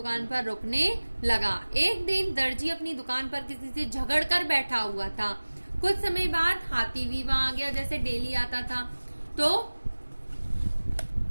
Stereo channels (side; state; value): both; inverted; correlation -1.00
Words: पर रुकने लगा। एक दिन दर्जी अपनी दुकान पर किसी से झगड़ कर बैठा हुआ था। कुछ समय बाद हाथी भी वहां आ गया, जैसे डेली आता था। तो